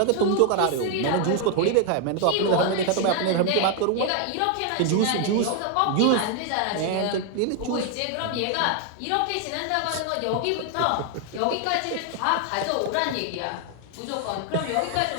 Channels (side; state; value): both; different; correlation 0.00